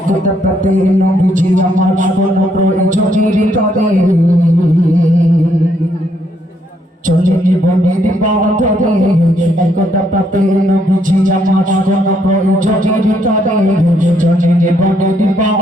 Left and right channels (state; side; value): normal; both; correlation 0.73